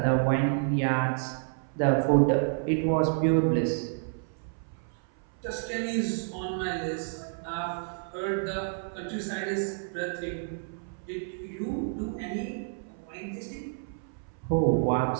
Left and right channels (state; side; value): silent; left; 58 dB below the other